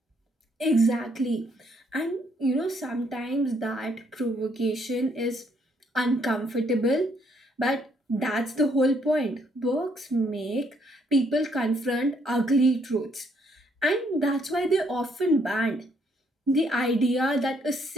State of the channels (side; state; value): both; normal; correlation 0.70